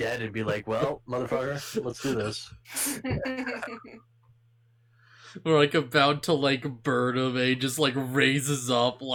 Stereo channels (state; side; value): identical; both; correlation 1.00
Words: and be like, "Well, motherfucker, let's do this." We're like about to like burn him, and he just like raises up